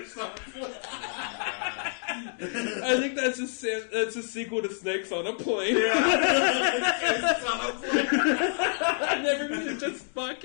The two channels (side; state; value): right; silent; 60 dB below the other